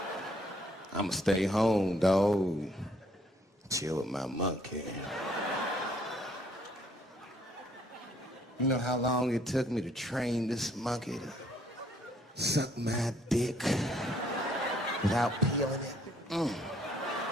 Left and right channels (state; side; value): normal; both; correlation 0.65